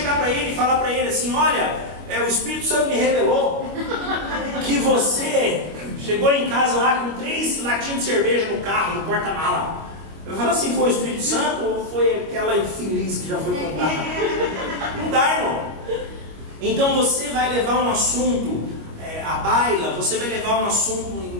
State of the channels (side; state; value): left; late; 25 ms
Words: para ele e falar para ele assim: olha, o Espírito Santo me revelou que você chegou em casa lá com 3 latinhas de cerveja no carro, no porta-mala. Eu falo assim: foi o Espírito Santo ou foi aquela infeliz que já foi contada? Não dá, irmão. Então você vai levar um assunto à baila, você vai levar um